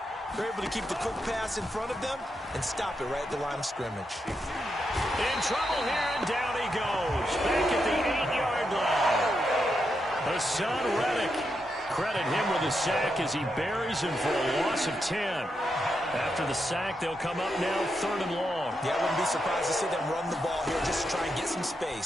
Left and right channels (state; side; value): normal; both; correlation 0.84